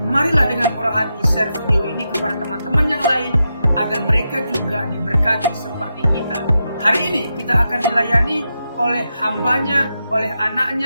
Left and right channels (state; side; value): inverted; both; correlation -0.86